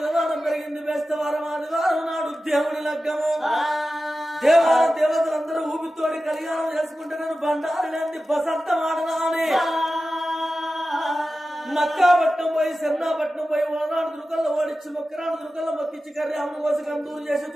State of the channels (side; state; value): both; normal; correlation 0.94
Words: పెరిగింది బేస్తవారం, ఆదివారం నాడు దేవుడి లగ్గము. దేవతలందరూ ఊపితోడి కళ్యాణం చేసుకుంటే నేను బండారి లేని బసంతం ఆడనా అని మక్కాపట్నం పోయి సెన్నాపట్నం పోయి ఓనాడు దుర్గల్లో ఓడించి మొక్కరాడు దుర్గల్లో మొక్కించి కర్యాములు కోసి కందూరు చేసి